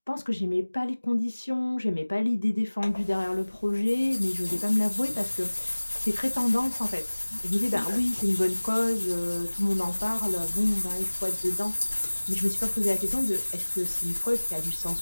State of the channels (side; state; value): both; inverted; correlation -1.00